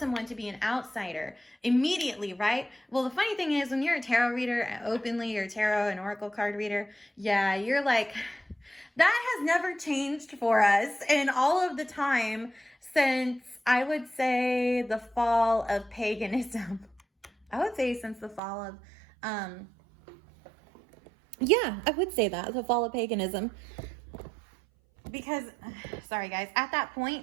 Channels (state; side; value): drops out; left; at 18.4 s